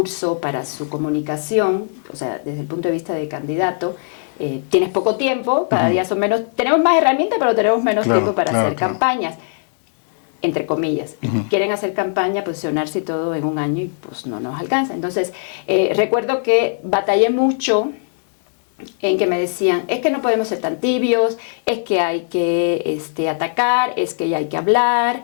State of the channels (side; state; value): right; silent; digital silence